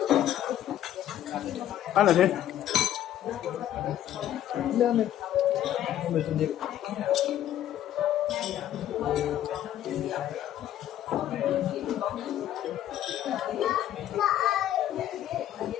Kan ada. Udah, men. Ambil sendiri.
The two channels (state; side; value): quieter; right; 11.9 dB